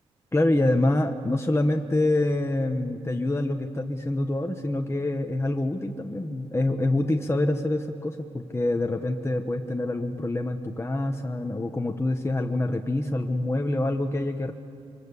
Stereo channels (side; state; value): both; normal; correlation 0.94